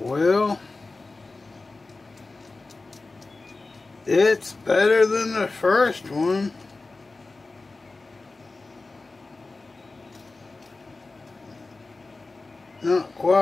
it's better than the first one. Not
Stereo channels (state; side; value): quieter; right; 3.5 dB